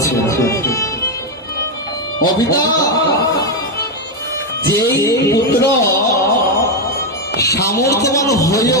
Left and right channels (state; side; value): normal; both; correlation 0.05